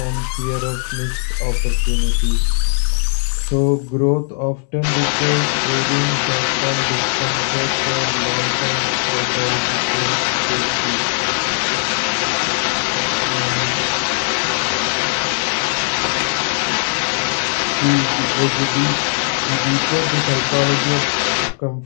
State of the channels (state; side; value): silent; right; digital silence